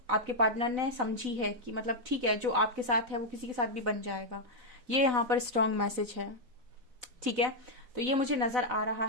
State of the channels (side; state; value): left; late; 4.0 ms